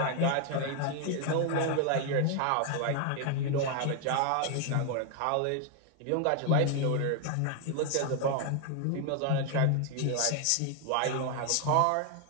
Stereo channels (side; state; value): both; different; correlation 0.00